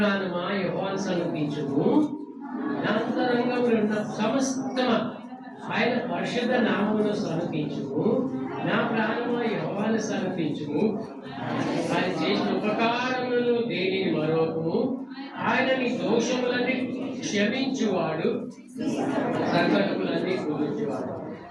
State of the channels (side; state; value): both; identical; correlation 1.00